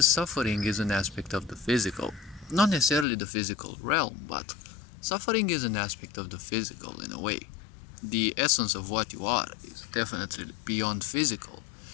suffering is an aspect of the physical. Not necessarily the physical realm, but suffering is an aspect of the physical in a way. The essence of what you are is definitely beyond physical.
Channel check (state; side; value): drops out; right; at 3.1 s